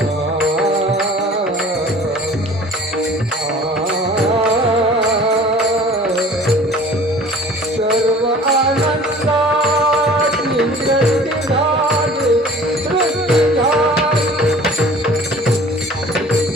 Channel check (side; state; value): both; normal; correlation 0.47